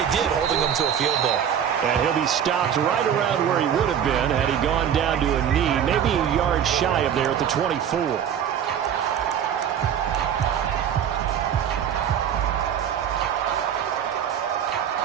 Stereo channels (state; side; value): quieter; left; 8.9 dB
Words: did, holding them to a field goal. And he'll be stopped right around where he would have been had he gone down to a knee, maybe a yard shy of there at the 24.